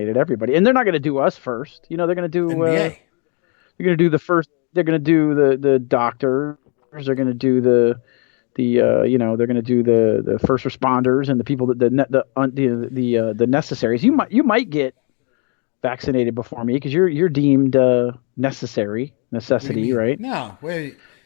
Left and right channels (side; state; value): right; quieter; 36.4 dB